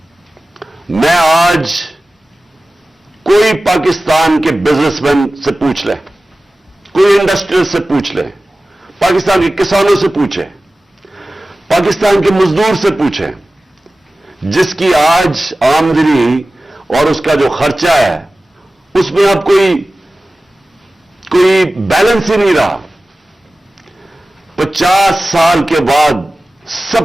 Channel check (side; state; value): both; normal; correlation 0.96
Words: میں آج کوئی پاکستان کے بزنس مین سے پوچھ لے, کوئی انڈسٹریل سے پوچھ لے, پاکستان کے کسانوں سے پوچھے, پاکستان کے مزدور سے پوچھے, جس کی آج آمدنی اور اس کا جو خرچہ ہے اس میں اب کوئی بیلنس ہی نہیں رہا. 50 سال کے بعد